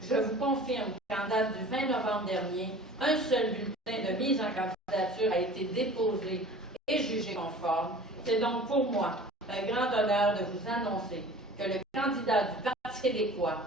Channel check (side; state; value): both; normal; correlation 0.43